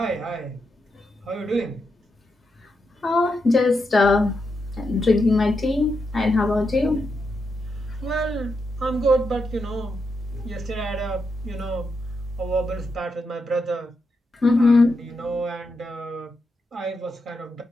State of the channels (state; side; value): normal; both; correlation 0.84